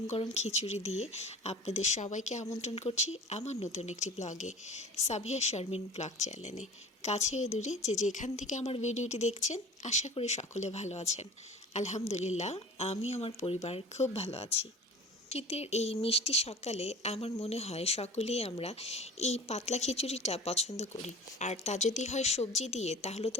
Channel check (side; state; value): both; normal; correlation 0.40